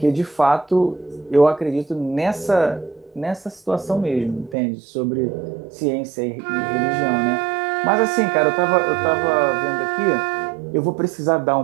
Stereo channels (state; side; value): drops out; left; at 4.5 s